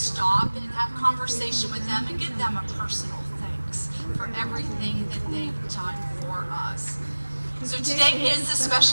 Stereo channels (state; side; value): inverted; both; correlation -1.00